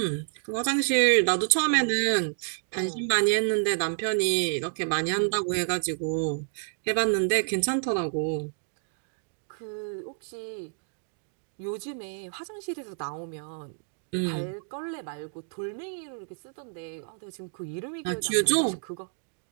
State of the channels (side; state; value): left; silent; digital silence